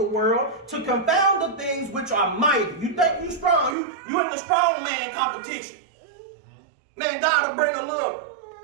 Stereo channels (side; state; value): left; drops out; at 3.8 s